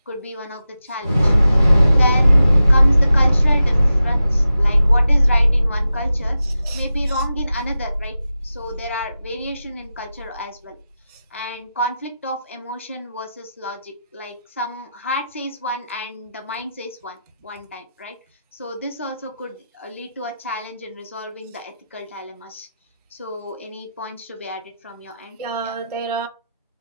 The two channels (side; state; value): both; inverted; correlation -0.92